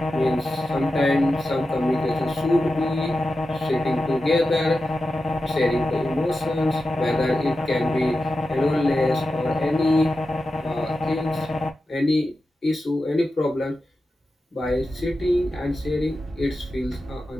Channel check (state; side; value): normal; both; correlation 0.91